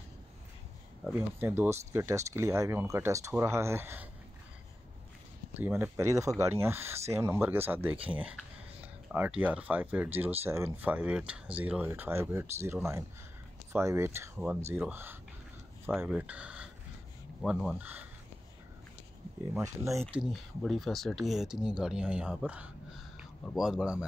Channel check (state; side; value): normal; both; correlation 0.93